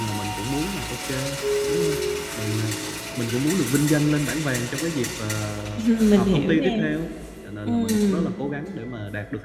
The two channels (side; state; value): both; identical; correlation 1.00